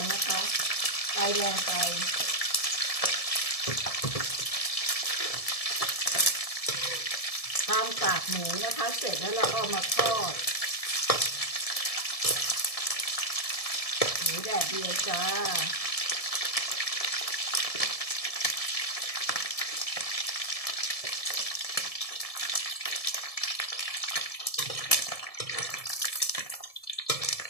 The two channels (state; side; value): late; right; 1.7 ms